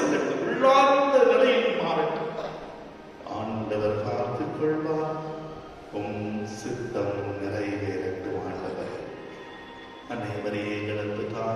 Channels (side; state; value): both; identical; correlation 1.00